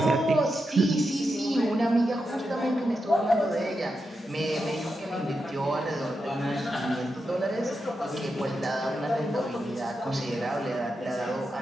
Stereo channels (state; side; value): normal; both; correlation 0.87